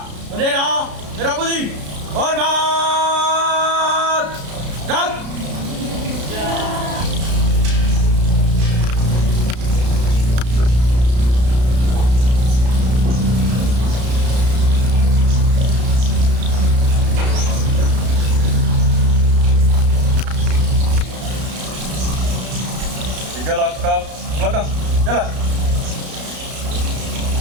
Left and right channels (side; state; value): left; late; 33 ms